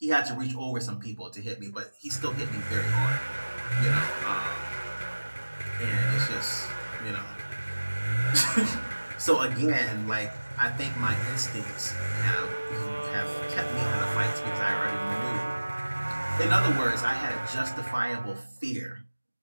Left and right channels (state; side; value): inverted; both; correlation -1.00